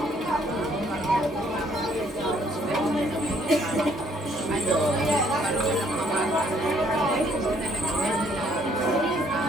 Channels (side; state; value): both; normal; correlation 0.65